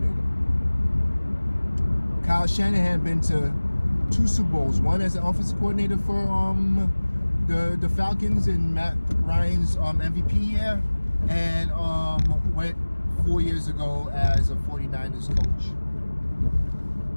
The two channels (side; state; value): both; inverted; correlation -1.00